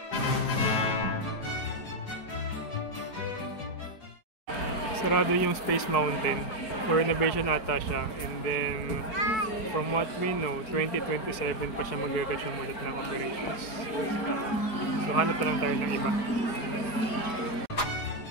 sarado yung Space Mountain. For renovation ata siya. And then, from what we know, 2027 pa siya mag-resume ulit ng operations. So, hanap pa lang tayo ng iba.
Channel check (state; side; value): late; right; 4.7 ms